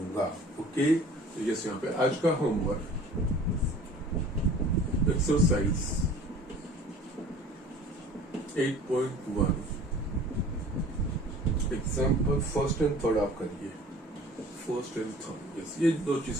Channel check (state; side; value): normal; both; correlation 0.47